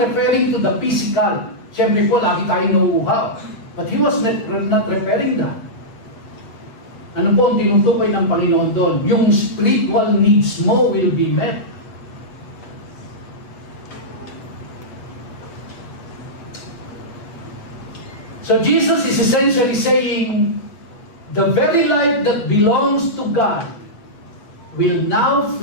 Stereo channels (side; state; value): right; late; 8.3 ms